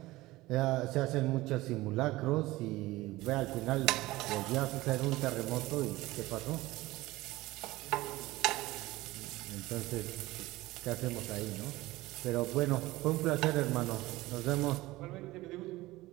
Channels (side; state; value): left; quieter; 18.7 dB